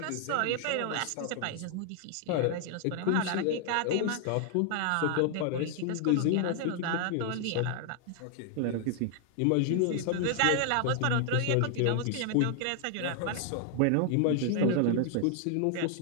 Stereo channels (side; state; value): both; different; correlation 0.00